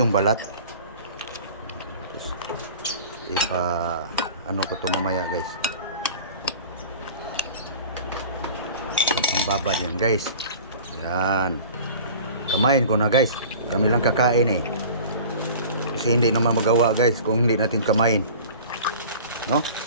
balat. Tapos, ano ko ito mamaya guys. Babad yan guys. Yan. Kamain ko na guys. Kami lang kakain eh. Kasi hindi naman magawa guys kung hindi natin kamain. No?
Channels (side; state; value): both; inverted; correlation -0.41